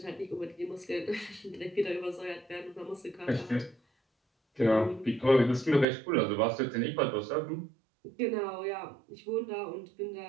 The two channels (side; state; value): left; drops out; at 5.9 s